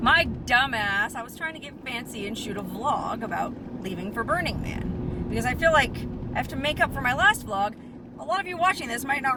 dumbass, I was trying to get fancy and shoot a vlog about leaving for Burning Man. Because I feel like I have to make up for my last vlog. A lot of you watching this might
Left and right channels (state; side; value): identical; both; correlation 1.00